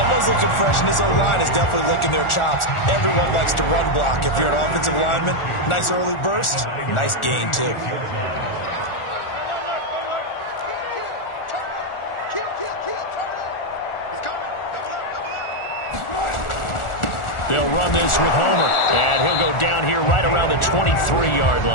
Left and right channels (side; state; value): right; late; 1.4 ms